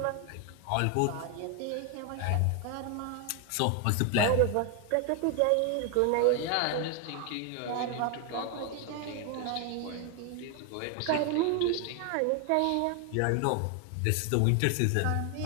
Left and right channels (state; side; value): different; both; correlation 0.01